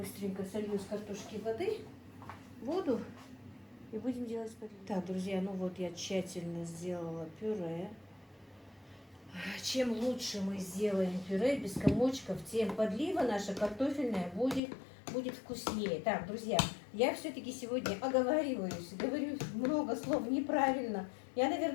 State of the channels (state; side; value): drops out; right; at 14.6 s